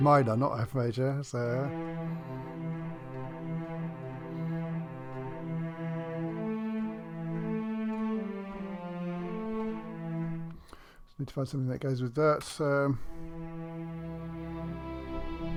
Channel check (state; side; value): identical; both; correlation 1.00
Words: minor, not F major, so just need to find something that goes with that. So